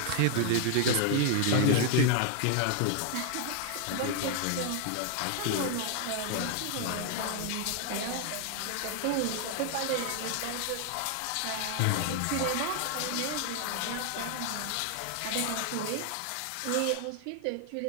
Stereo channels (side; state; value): both; different; correlation 0.00